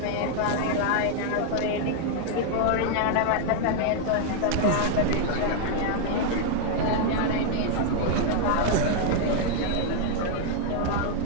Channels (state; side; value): different; both; correlation 0.00